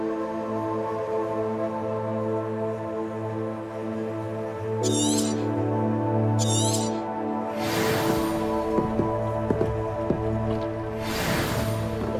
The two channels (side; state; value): both; identical; correlation 1.00